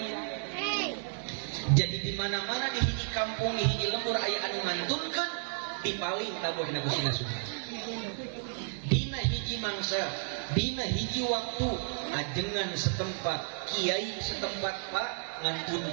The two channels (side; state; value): left; silent; digital silence